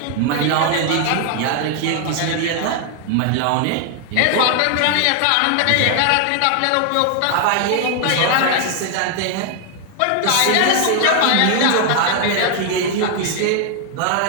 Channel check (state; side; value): different; both; correlation 0.00